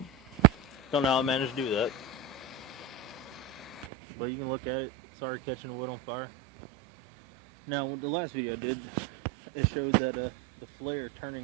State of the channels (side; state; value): left; drops out; at 3.9 s